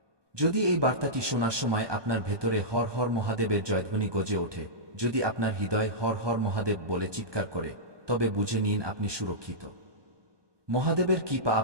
যদি এই বার্তাটি শোনার সময় আপনার ভেতরে হর হর মহাদেবের জয়ধ্বনি গজে ওঠে, যদি আপনার হৃদয় হর হর মহাদেব বলে চিৎকার করে, তবে বুঝে নিন আপনি সুরক্ষিত। মহাদেবের কৃপা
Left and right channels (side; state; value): left; late; 1.2 ms